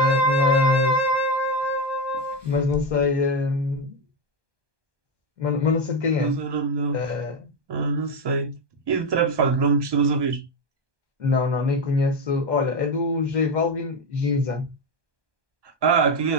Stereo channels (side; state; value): left; late; 1.2 ms